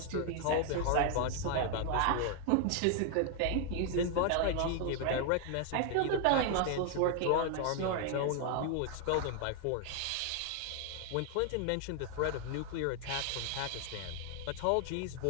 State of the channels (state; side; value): different; both; correlation 0.00